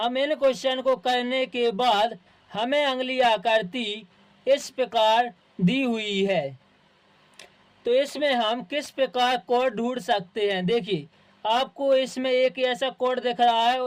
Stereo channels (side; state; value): both; identical; correlation 1.00